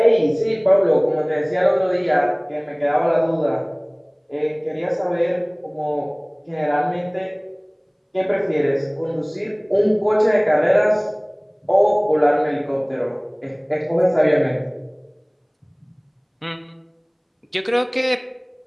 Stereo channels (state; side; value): identical; both; correlation 1.00